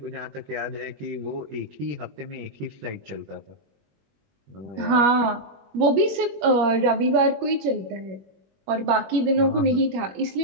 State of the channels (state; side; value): late; left; 21 ms